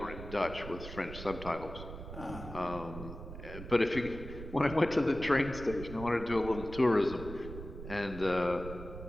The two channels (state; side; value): noise; right; rumble, 11 dB below the sound